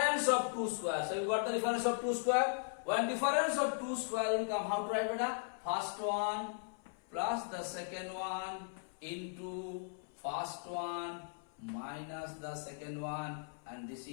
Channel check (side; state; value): right; silent; 53 dB below the other